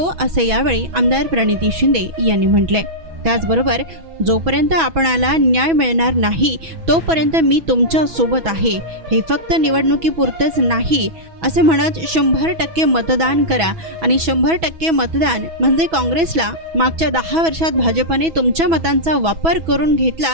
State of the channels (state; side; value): late; left; 6.1 ms